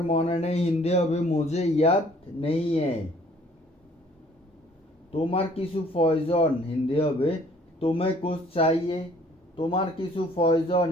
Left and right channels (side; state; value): both; normal; correlation 0.57